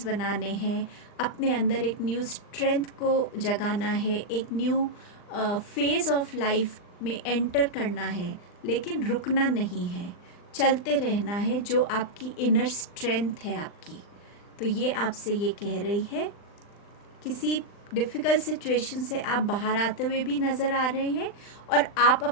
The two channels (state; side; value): late; right; 39 ms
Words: बनाने हैं, अपने अंदर एक न्यू स्ट्रेंथ को जगाना है, एक न्यू फेज़ ऑफ लाइफ में एंटर करना है, लेकिन रुकना नहीं है, चलते रहना है, जो आपकी इनर स्ट्रेंथ है आपकी। तो ये आपसे ये कह रही है, किसी डिफ़िकल्ट सिचुएशन से आप बाहर आते हुए भी नज़र आ रहे हैं और आप